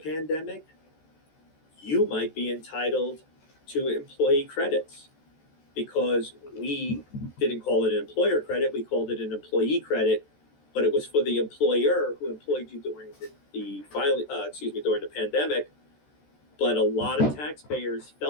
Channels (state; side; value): late; right; 14 ms